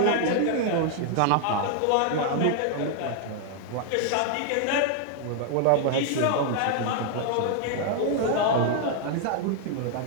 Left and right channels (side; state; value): both; different; correlation 0.00